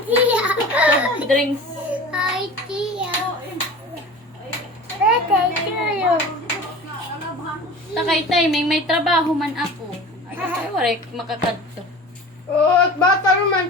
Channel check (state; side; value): normal; both; correlation 0.37